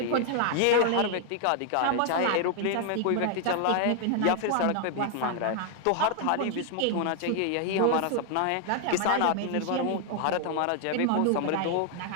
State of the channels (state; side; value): different; both; correlation 0.00